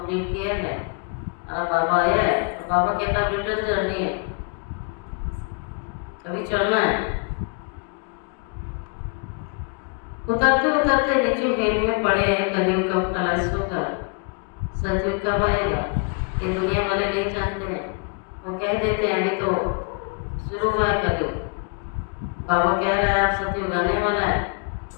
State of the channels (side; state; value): right; quieter; 34.7 dB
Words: किया है। अब बाबा आया है, तो बाबा कहता है रिटर्न जर्नी है, कभी चलना है। उतरते उतरते नीचे हेल में पड़े हैं। कलयुग कब खलास होगा, सतयुग कब आएगा, ये दुनिया वाले नहीं जानते हैं। वो कह देते हैं अभी तो शुरू हुआ है कलयुग, बाबा कह रहा है आप सतयुग आने वाला है।